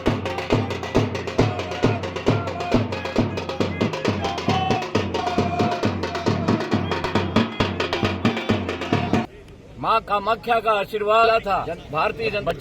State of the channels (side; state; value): both; identical; correlation 1.00